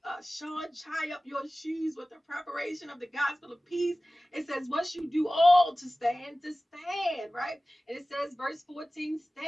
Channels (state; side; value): normal; both; correlation 0.97